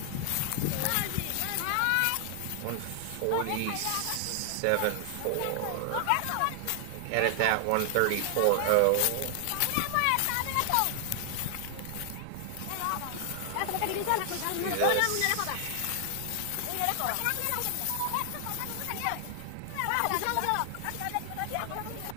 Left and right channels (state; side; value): different; both; correlation 0.00